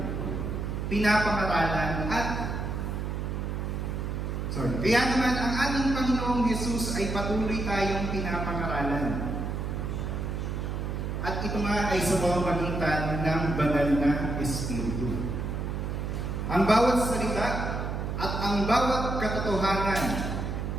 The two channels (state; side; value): noise; right; hum, 3 dB below the sound